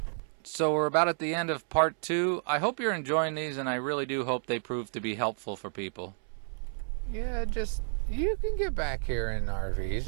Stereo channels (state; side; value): silent; left; 57 dB below the other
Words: So we're about at the end of part 2. I hope you're enjoying these, and I really do hope they prove to be helpful for people. Yeah, you can get back here in RVs.